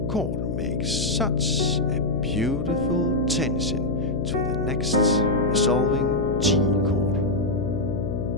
chord makes such a beautiful tension to the next resolving G chord.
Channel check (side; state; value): left; noise; hum, 3 dB below the sound